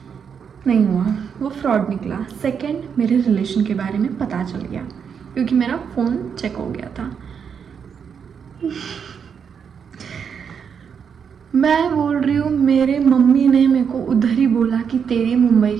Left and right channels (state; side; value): quieter; left; 7.0 dB